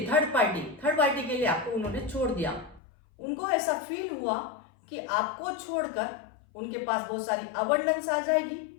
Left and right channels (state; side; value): drops out; right; at 2.8 s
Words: थर्ड पार्टी के लिए आपको उन्होंने छोड़ दिया। उनको ऐसा फील हुआ कि आपको छोड़कर उनके पास बहुत सारी अबंडेंस आ जाएगी,